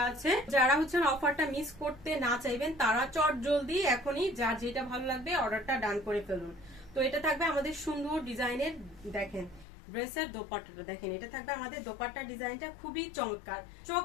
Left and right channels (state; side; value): drops out; right; at 9.7 s